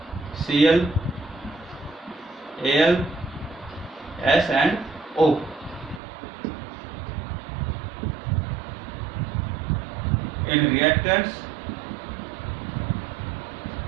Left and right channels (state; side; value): drops out; left; at 6.0 s